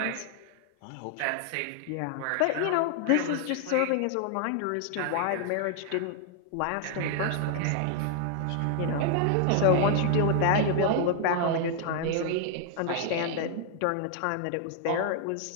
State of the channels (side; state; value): both; different; correlation 0.00